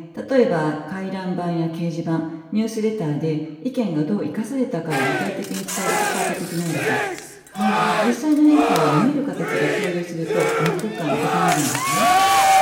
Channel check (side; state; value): both; identical; correlation 1.00